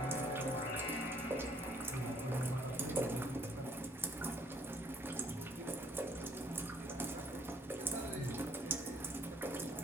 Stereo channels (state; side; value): normal; both; correlation 0.63